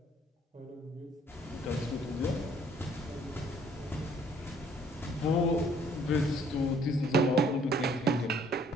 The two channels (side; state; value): both; normal; correlation 0.61